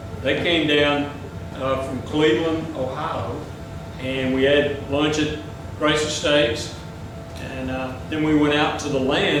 They came down from Cleveland, Ohio, and we had lunch at Grace Estates, and then we went out to the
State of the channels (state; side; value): identical; both; correlation 1.00